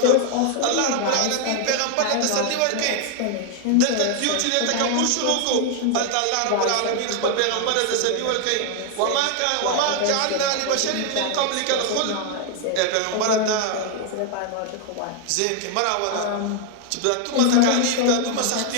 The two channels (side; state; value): both; different; correlation 0.00